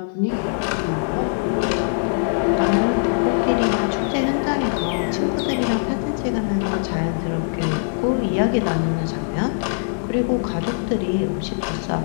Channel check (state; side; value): silent; right; digital silence